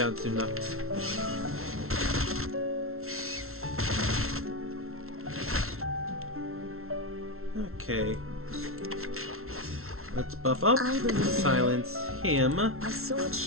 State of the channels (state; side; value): late; left; 0.62 ms